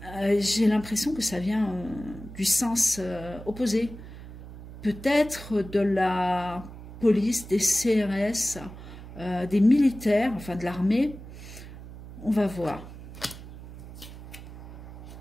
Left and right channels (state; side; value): noise; right; hum, 14 dB below the sound